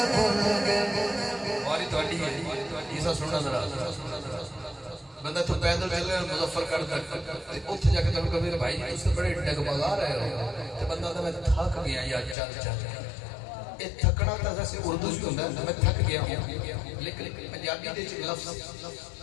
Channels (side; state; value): right; drops out; at 12.4 s